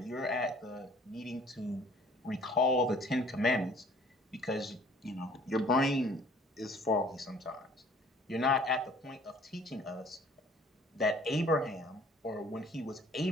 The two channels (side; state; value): both; normal; correlation 0.54